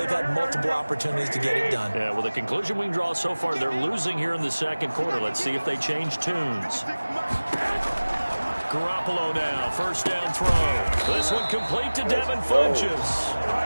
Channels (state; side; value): inverted; both; correlation -1.00